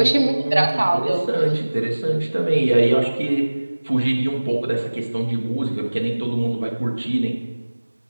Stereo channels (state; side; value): inverted; both; correlation -1.00